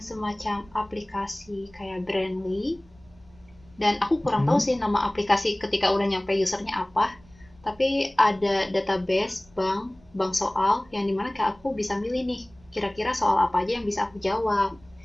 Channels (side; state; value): right; noise; rumble, 28 dB below the sound